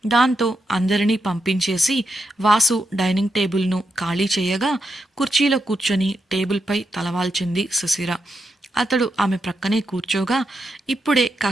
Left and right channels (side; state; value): both; normal; correlation 0.84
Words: దాంతో అందరినీ పంపించేసి వాసు డైనింగ్ టేబుల్ను ఖాళీ చేయగా కుర్చీలో కూర్చొని టేబుల్పై తలవాల్చింది శిశిర. అతడు ఆమె ప్రక్కనే కూర్చోగా ఇప్పుడే